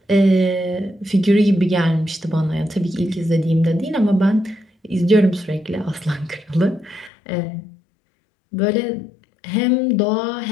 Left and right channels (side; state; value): right; drops out; at 7.1 s